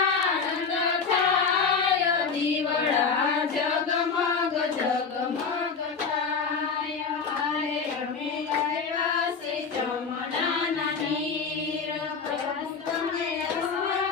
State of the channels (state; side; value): quieter; right; 5.4 dB